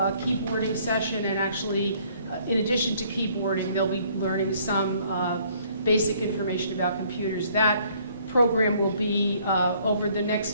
keyboarding session, and actually, in addition to keyboarding, they'll be learning some basic information about computers. That program will be, over the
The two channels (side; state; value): both; inverted; correlation -0.62